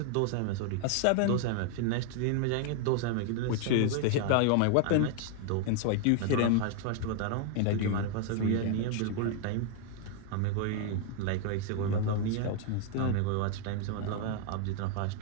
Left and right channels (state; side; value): different; both; correlation 0.00